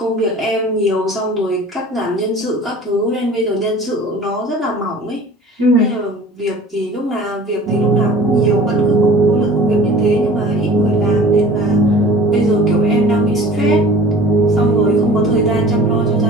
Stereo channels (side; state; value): both; normal; correlation 0.44